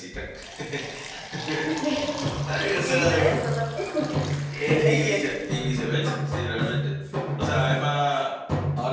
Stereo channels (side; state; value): both; identical; correlation 1.00